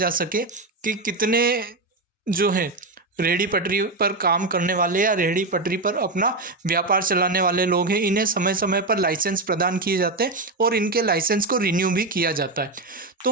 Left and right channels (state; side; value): quieter; left; 3.2 dB